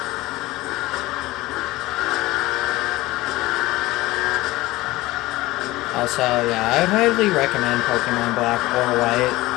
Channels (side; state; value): right; quieter; 19.0 dB